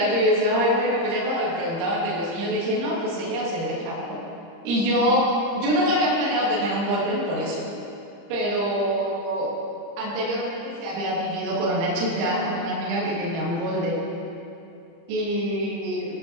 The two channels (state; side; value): late; left; 30 ms